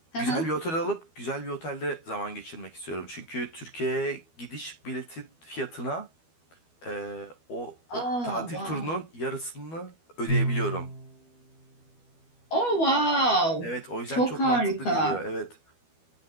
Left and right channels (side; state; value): right; late; 12 ms